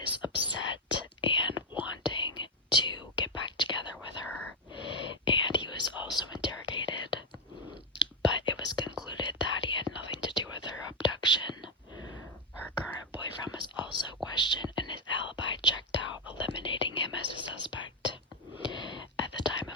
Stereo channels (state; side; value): normal; both; correlation 0.07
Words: upset and wanting to get back together with her, and he was also interrogated, but it was concluded that he had nothing to do with her abduction. Her current boyfriend was also questioned and his alibi checked out, eliminating him as a suspect. At the time